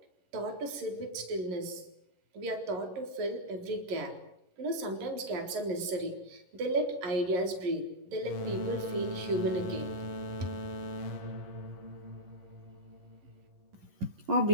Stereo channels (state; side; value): late; left; 11 ms